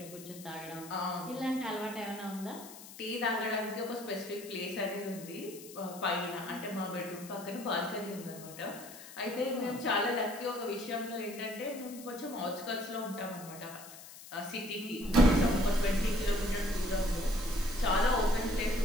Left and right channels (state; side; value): noise; left; hiss, 16 dB below the sound